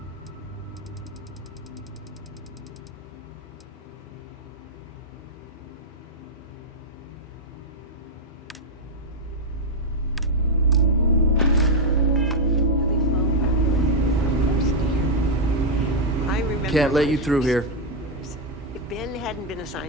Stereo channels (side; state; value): both; normal; correlation -0.01